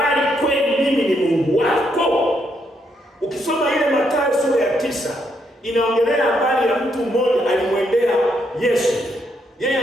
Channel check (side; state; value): both; normal; correlation 0.76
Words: kweli mimi ni Mungu wako? Ukisoma ile Mathayo sura ya 9 inaongelea habari ya mtu mmoja alimwendea Yesu. Yeye